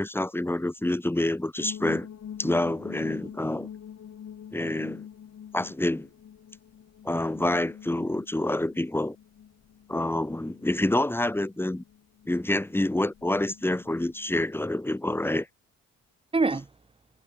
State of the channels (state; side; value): normal; both; correlation 0.84